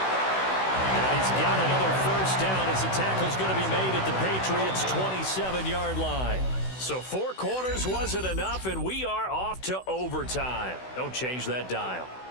And he's got another 1st down as the tackle's going to be made at the Patriots' 27-yard line. So 4 quarters wasn't enough, and we are off to overtime. Don't change that dial.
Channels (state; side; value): late; right; 16 ms